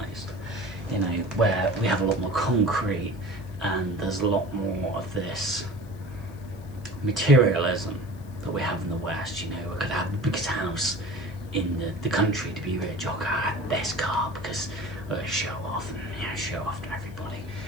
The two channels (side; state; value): left; noise; hiss, 26 dB below the sound